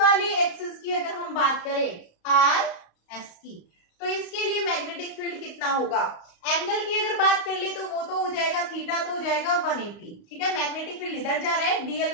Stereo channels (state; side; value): late; right; 35 ms